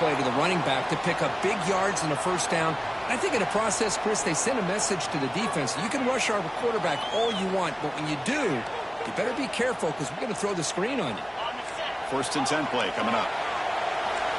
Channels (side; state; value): both; identical; correlation 1.00